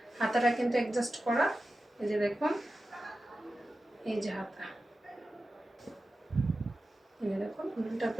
হাতাটা কিন্তু অ্যাডজাস্ট করা। এই যে দেখুন, এই যে হাতা, দেখুন উলটা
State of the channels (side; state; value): both; normal; correlation 0.93